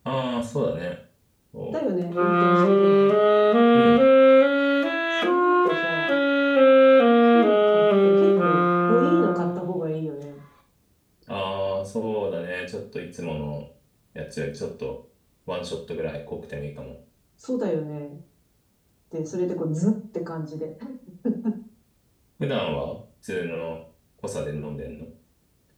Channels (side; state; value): both; identical; correlation 1.00